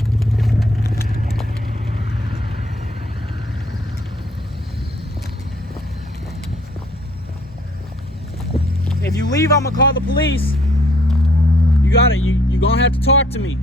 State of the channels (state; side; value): normal; both; correlation 0.62